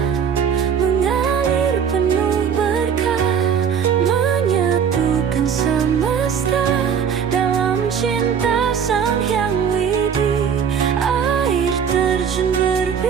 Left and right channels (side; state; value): left; quieter; 7.4 dB